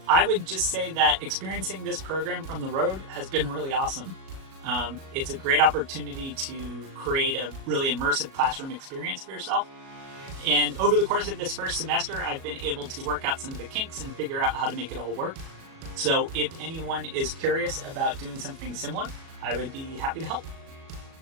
I would just say that experiencing this program from the road has been really awesome. It's a great opportunity to create a really immersive classroom experience for yourself. And over the course of this first semester, I've been able to work out some of the kinks and figure out how to make it all work. So if anyone is curious about doing something similar, I would be happy to help.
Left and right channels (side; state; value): left; late; 37 ms